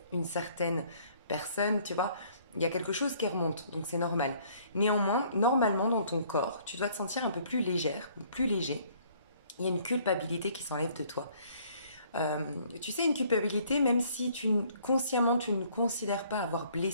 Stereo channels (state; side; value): inverted; both; correlation -0.60